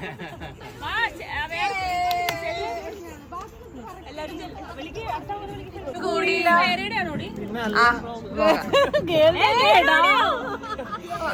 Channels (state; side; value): identical; both; correlation 1.00